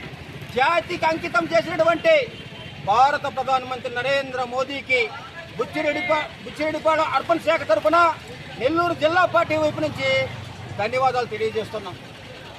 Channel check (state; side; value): identical; both; correlation 1.00